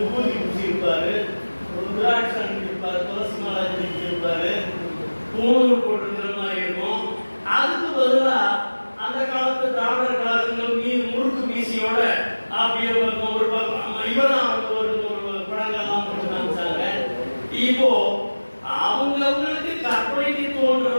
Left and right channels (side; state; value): both; inverted; correlation -1.00